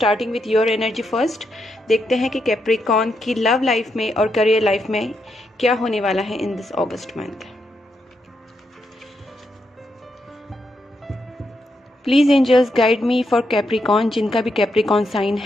with your energy first. देखते हैं कि कैप्रिकॉन की लव लाइफ में और करियर लाइफ में क्या होने वाला है in this August month. Please angels guide me for Capricorn. जिनका भी कैप्रिकॉन साइन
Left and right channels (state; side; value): normal; both; correlation 0.81